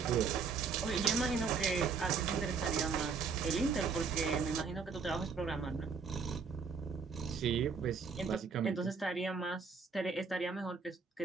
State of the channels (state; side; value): quieter; left; 5.4 dB